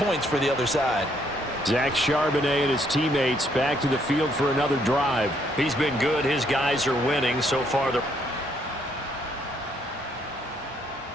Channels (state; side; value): normal; both; correlation 0.70